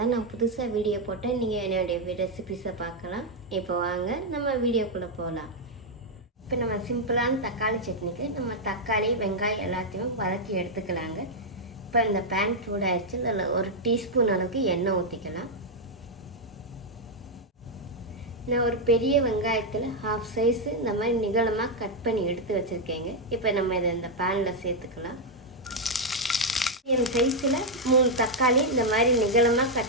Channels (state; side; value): normal; both; correlation -0.01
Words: நான் புதுசாக வீடியோ போட்டேன் நீங்கள் என்னுடைய ரெசிபிஸை பார்க்கலாம். இப்போ வாங்க நம்ம வீடியோக்குள்ளே போகலாம். இப்போ நம்ம சிம்பிளான தக்காளி சட்னிக்கு நம்ம தக்காளி வெங்காயம் எல்லாத்தையும் வதக்கி எடுத்துக்கலாங்க. இப்போ இந்த பேன் சூடாகிடுச்சு. அதில் 1 டீஸ்பூன் அளவுக்கு எண்ணெய் ஊற்றிக்கலாம். நான் ஒரு பெரிய வெங்காயத்தில் ஹாஃப் சைஸு இந்த மாதிரி நிகழமாக கட் பண்ணி எடுத்து வச்சுருக்கேங்க. இப்போ நம்ம இதை இந்த பேனில் சேர்த்துக்கலாம். என் சைஸில் 3 தக்காளி இந்த மாதிரி நிகழமாக